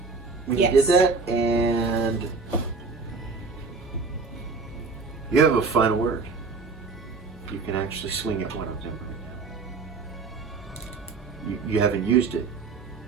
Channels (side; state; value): left; quieter; 4.4 dB